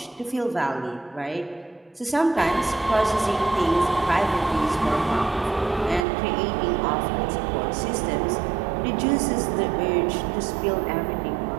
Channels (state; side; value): drops out; left; at 6.1 s